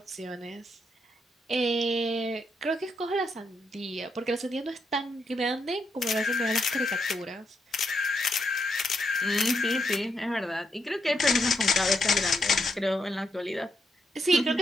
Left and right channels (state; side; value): normal; both; correlation 0.80